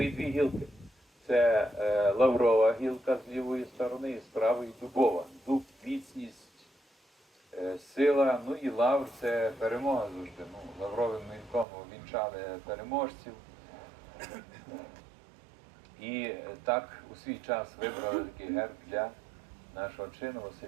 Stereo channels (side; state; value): left; drops out; at 11.7 s